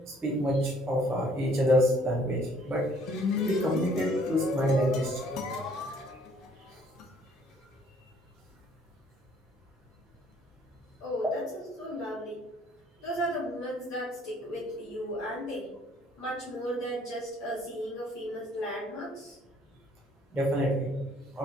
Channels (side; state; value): both; normal; correlation 0.61